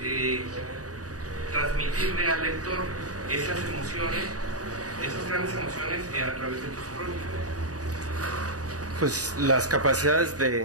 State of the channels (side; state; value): left; late; 0.67 ms